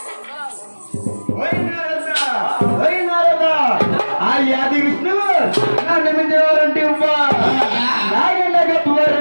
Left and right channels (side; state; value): both; inverted; correlation -1.00